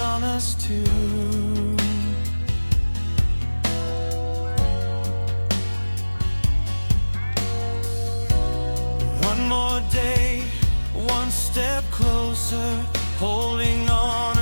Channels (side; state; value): both; inverted; correlation -1.00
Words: us too. One more day, one step closer, holding on